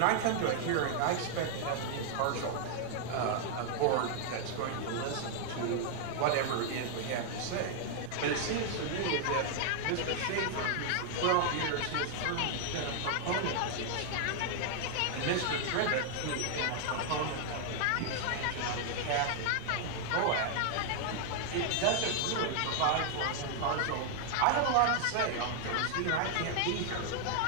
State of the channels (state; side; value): different; both; correlation 0.00